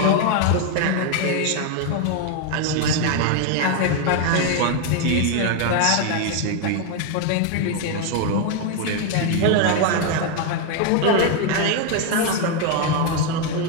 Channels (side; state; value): both; different; correlation 0.01